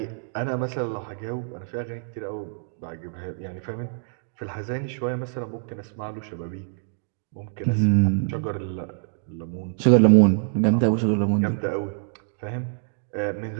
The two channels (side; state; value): left; silent; digital silence